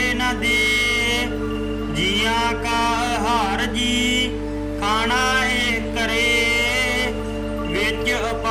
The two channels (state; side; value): identical; both; correlation 1.00